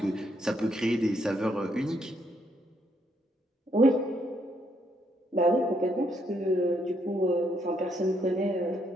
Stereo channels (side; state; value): both; normal; correlation 0.74